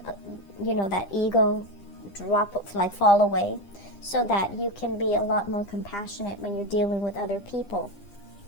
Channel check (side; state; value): right; late; 9.9 ms